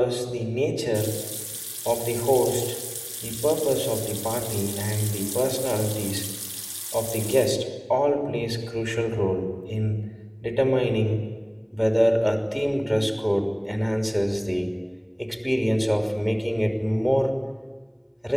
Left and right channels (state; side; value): identical; both; correlation 1.00